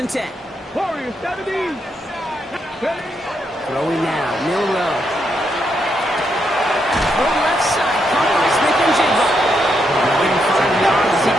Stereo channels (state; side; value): normal; both; correlation 0.80